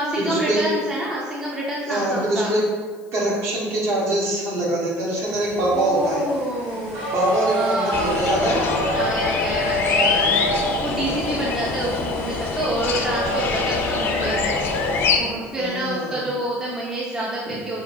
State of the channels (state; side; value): noise; left; hiss, 30 dB below the sound